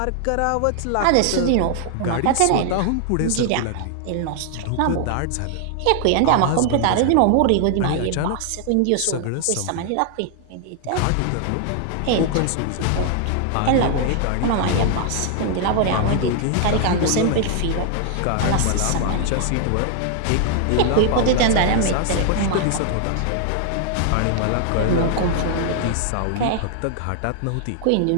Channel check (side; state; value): both; different; correlation 0.00